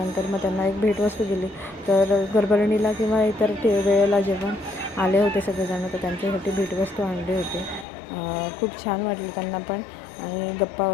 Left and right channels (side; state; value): right; drops out; at 7.9 s